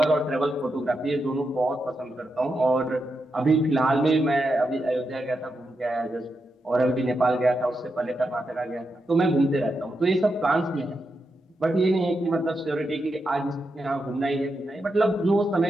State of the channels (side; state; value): both; normal; correlation 0.86